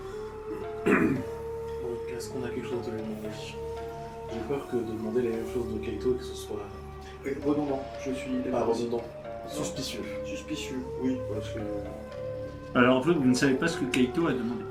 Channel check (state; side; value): identical; both; correlation 1.00